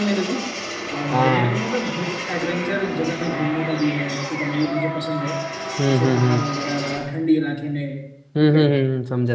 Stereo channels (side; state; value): both; identical; correlation 1.00